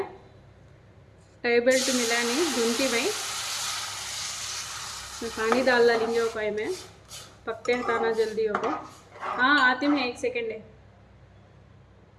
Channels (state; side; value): identical; both; correlation 1.00